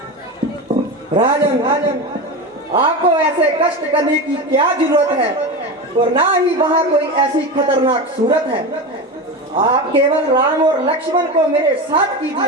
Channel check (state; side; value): normal; both; correlation 0.23